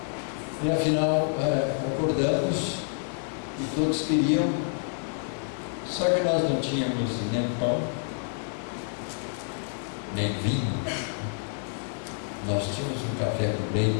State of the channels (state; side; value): silent; right; 59 dB below the other